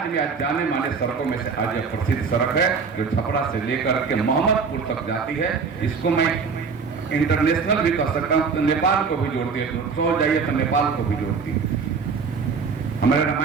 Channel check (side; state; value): left; quieter; 5.3 dB